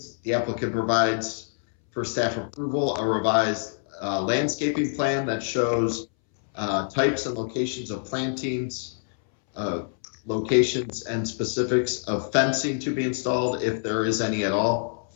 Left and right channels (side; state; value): right; silent; 61 dB below the other